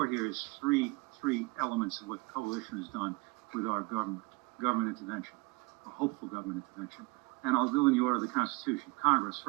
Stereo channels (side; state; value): left; quieter; 26.0 dB